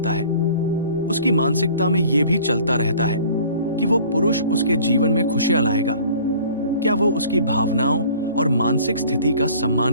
है। उसकी मानसिकता में ये भी चलता रहता है कि वो पुरुष उसके जीवन में खुशियां लाएगा, क्या वो उसकी भावनाओं और मानसिक स्थिति का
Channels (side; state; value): both; inverted; correlation -0.49